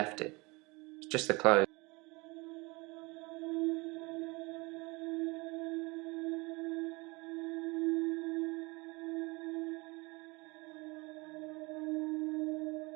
it. It's just the clothes.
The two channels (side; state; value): left; quieter; 25.7 dB